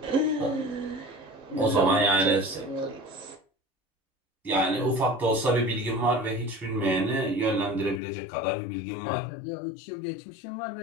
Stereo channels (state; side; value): drops out; right; at 8.0 s